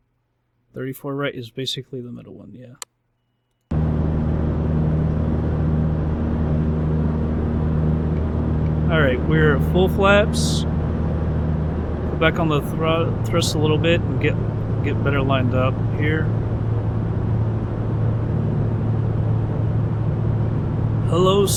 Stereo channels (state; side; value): identical; both; correlation 1.00